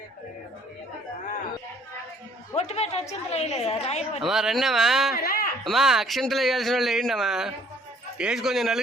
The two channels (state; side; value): normal; both; correlation 0.59